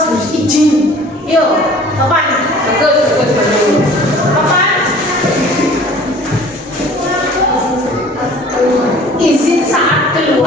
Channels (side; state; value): both; normal; correlation 0.48